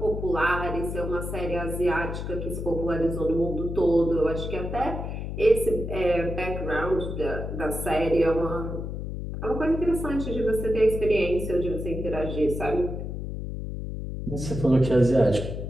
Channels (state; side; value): noise; left; hum, 5 dB below the sound